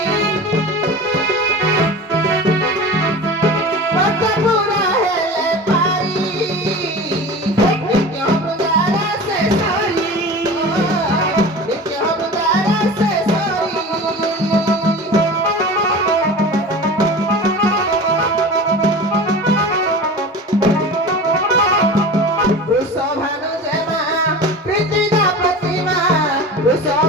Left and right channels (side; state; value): both; normal; correlation 0.34